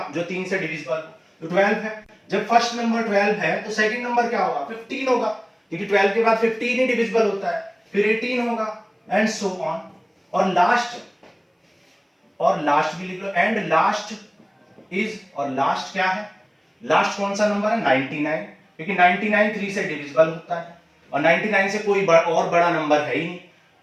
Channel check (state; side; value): identical; both; correlation 1.00